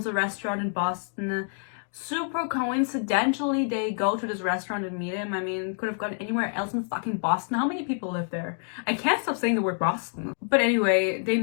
a restaurant in Boston. Super coincidentally, they go to this restaurant and meet him. I mean, could have gone anywhere else in fucking Boston. How many people live there? I can't stop saying the word Boston. But anyway, they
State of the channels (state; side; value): silent; right; 60 dB below the other